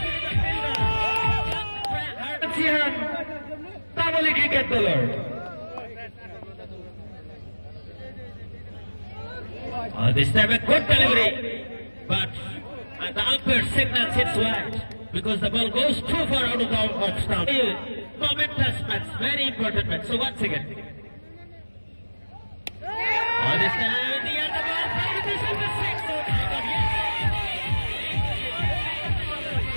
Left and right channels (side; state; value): both; inverted; correlation -1.00